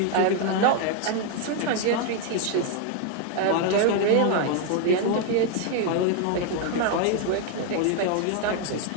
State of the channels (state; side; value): different; both; correlation 0.00